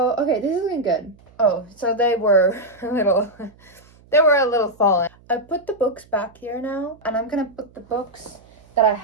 okay, this is looking good. Oh, so they were a little fallen. I put the books back here now, and I'm gonna put the books that I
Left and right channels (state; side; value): noise; right; hum, 28 dB below the sound